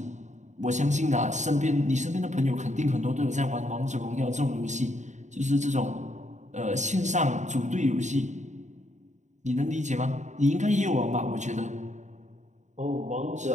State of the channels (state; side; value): late; left; 0.34 ms